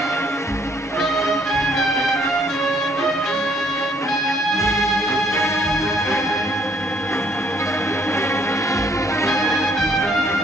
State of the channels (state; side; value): normal; both; correlation 0.64